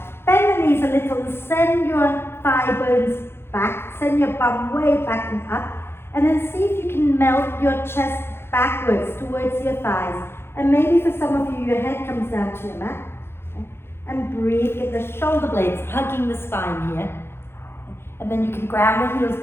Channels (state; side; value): late; right; 0.12 ms